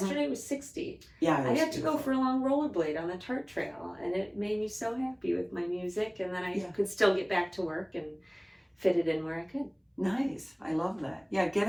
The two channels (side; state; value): both; identical; correlation 1.00